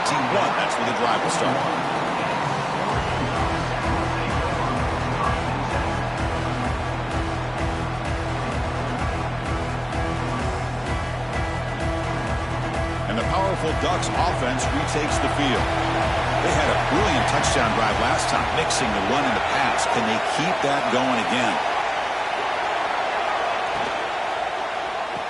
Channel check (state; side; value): identical; both; correlation 1.00